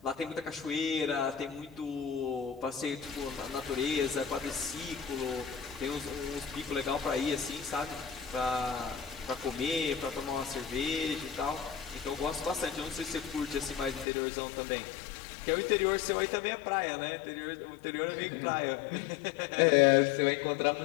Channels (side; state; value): right; drops out; at 14.1 s